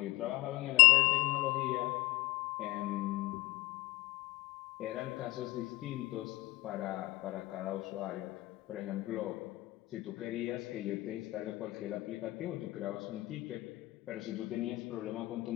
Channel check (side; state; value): right; quieter; 19.8 dB